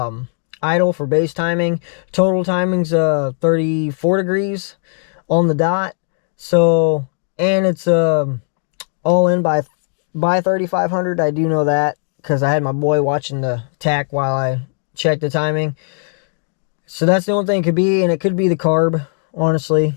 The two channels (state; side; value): silent; right; digital silence